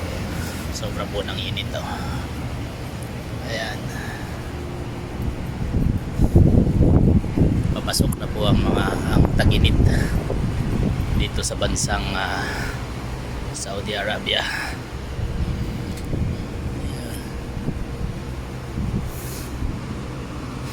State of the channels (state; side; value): identical; both; correlation 1.00